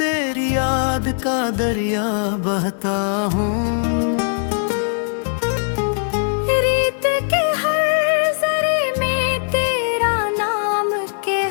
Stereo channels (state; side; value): silent; right; digital silence